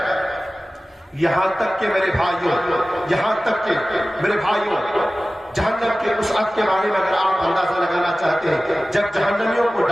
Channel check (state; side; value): normal; both; correlation 0.97